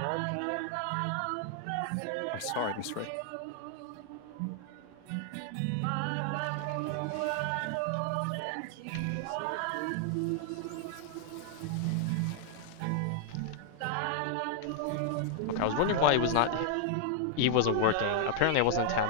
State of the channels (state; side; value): different; both; correlation -0.01